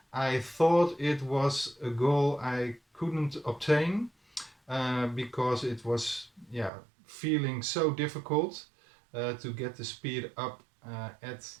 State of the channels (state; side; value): drops out; left; at 6.7 s